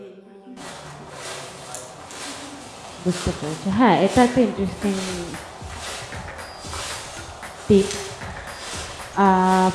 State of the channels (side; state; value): both; identical; correlation 1.00